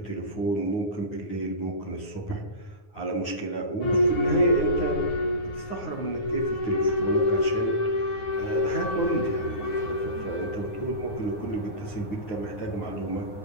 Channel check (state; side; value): late; right; 9.7 ms